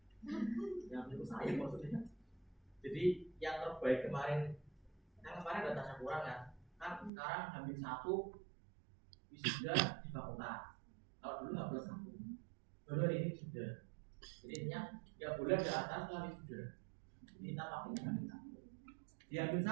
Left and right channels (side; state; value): left; drops out; at 7.1 s